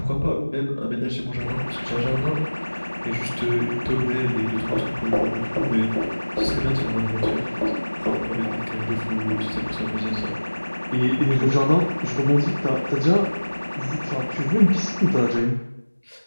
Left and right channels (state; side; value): inverted; both; correlation -1.00